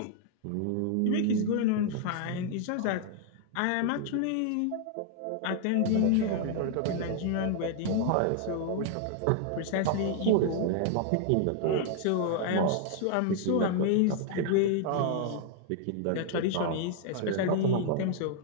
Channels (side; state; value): both; different; correlation 0.00